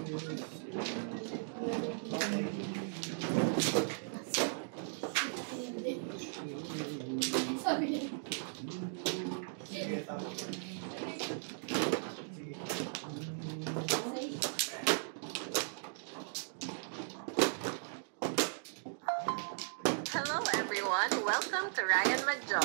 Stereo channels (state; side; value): silent; left; digital silence